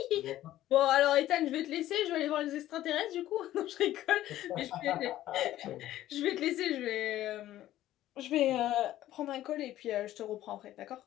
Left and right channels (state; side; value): quieter; right; 13.9 dB